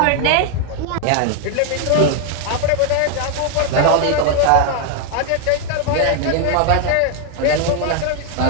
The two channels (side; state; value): both; different; correlation 0.00